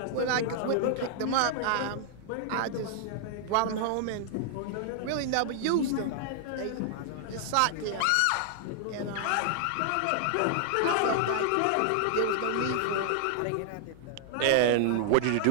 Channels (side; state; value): both; different; correlation -0.01